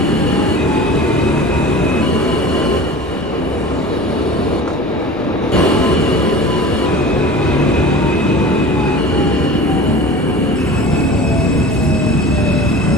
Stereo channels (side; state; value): both; normal; correlation 0.37